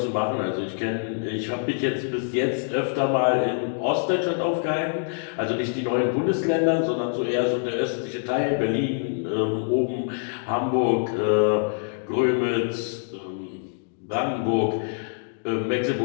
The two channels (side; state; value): right; silent; digital silence